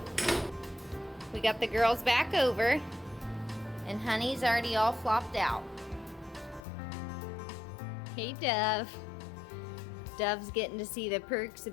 We got the girls back over and Honey's already all flopped out. Hey, Dove. Dove's getting to see the perks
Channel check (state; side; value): drops out; right; at 6.7 s